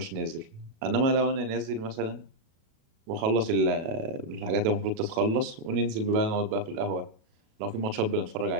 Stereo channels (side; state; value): left; late; 37 ms